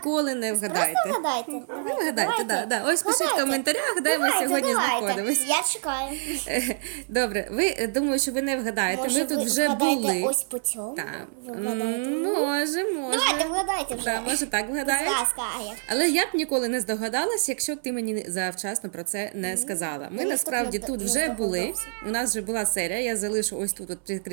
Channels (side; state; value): left; silent; 61 dB below the other